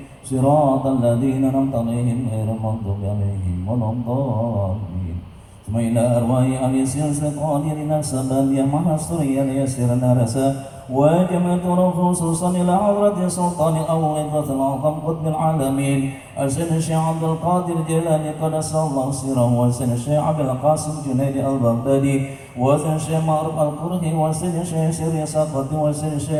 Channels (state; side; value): identical; both; correlation 1.00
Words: siratal ladzina an'amta 'alaihim ghairil maghdubi 'alaihim waladdallin. Tsumma ila arwahi al-yasir al-qadirin as-sabaliyah mahasuriya yasirna rasa وجمعت خصوصا إلى حضرة سلطان الأول الأعظم قطب العالمين السيد الشيخ عبد القادر الجيلاني قدس الله سره والسيد الشيخ عبد القاسم جنيد البغدادي وسيد الشيخ معروف القرهي وسيد الشيخ سيري سقط وسيد